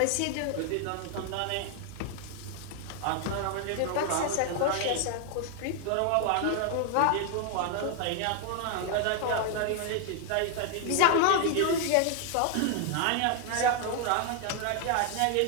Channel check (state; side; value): different; both; correlation 0.00